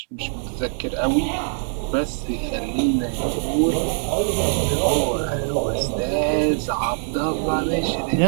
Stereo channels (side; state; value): left; silent; digital silence